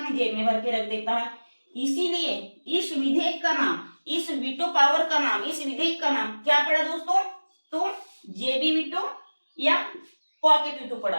जेब में भर के रख देता है। इसीलिए इस विधेयक का नाम, इस वीटो पावर का नाम, इस विधेयक का नाम क्या पड़ा दोस्तों, तो जेबी वीटो या पॉकेट वीटो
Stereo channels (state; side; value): inverted; both; correlation -1.00